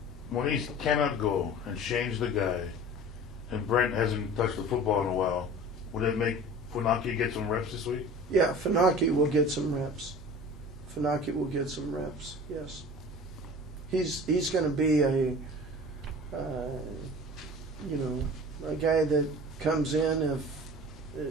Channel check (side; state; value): both; normal; correlation 0.40